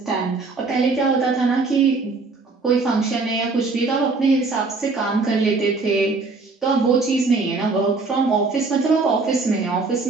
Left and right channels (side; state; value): left; quieter; 3.9 dB